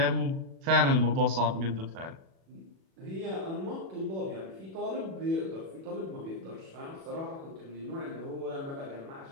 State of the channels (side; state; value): left; late; 36 ms